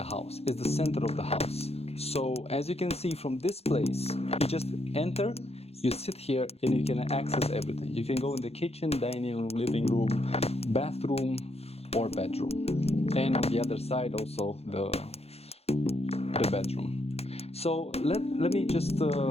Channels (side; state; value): right; late; 0.29 ms